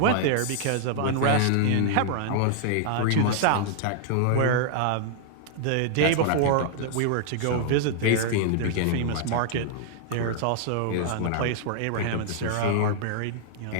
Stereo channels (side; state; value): both; different; correlation 0.00